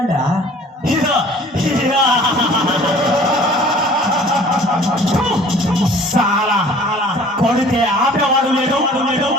ಸಾಲ ಕೊಡುತ್ತೆ ಆಪ್ಯವಾಗಲೇನು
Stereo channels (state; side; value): normal; both; correlation 0.49